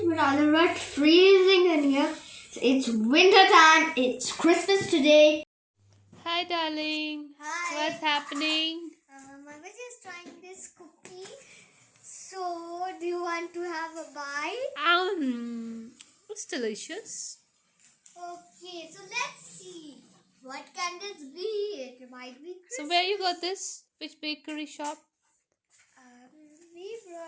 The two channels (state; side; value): identical; both; correlation 1.00